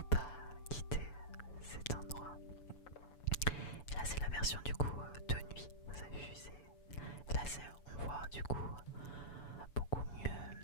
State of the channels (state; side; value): late; right; 6.9 ms